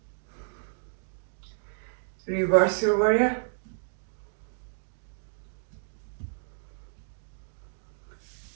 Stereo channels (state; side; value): silent; left; digital silence